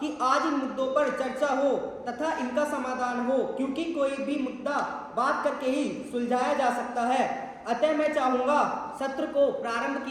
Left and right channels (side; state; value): both; identical; correlation 1.00